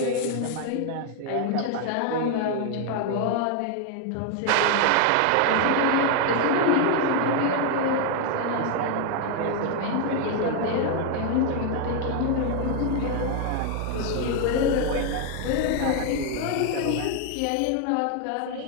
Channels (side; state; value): both; different; correlation 0.00